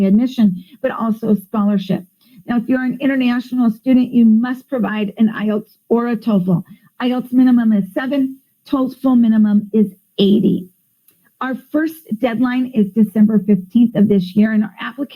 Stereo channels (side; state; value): both; identical; correlation 1.00